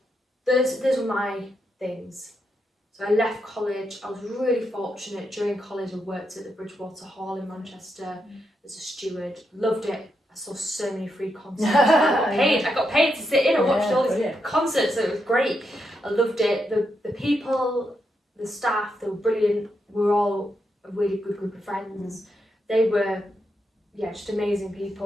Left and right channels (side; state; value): both; normal; correlation 0.82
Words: those were my things. So I left college. I was really fortunate. During college I worked at the Bridgewater Hall in Manchester as a steward. Loved it. I saw so many free concerts. I got paid to sit in and watch all these concerts, so it was great. I loved it. The people, the staff, they were brilliant. We were all a really good group of friends. They were, just amazing